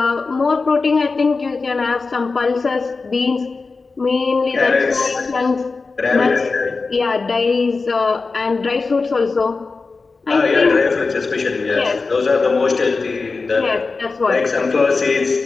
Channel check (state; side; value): quieter; right; 4.1 dB